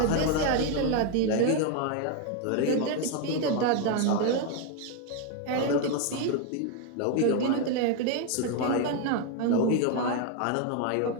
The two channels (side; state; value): both; different; correlation 0.01